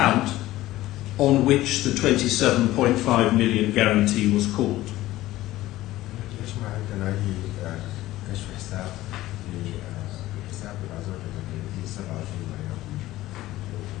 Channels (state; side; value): quieter; right; 16.2 dB